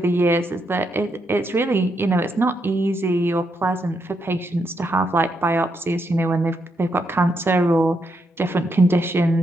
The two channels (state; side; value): normal; both; correlation 0.80